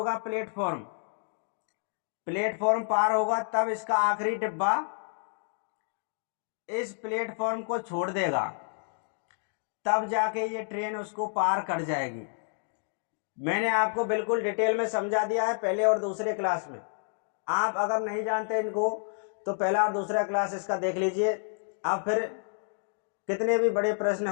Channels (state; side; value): silent; right; 58 dB below the other